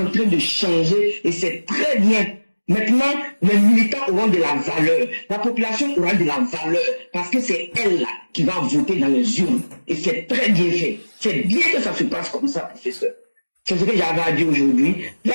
train de changer et c'est très bien. Maintenant, les militants auront de la valeur. La population aura de la valeur parce que c'est elle là qui va voter dans les urnes. Et c'est très bien fait. C'est bien que ça se passe comme ça, professeur. C'est ce que j'avais à dire aujourd'hui.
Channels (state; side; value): inverted; both; correlation -1.00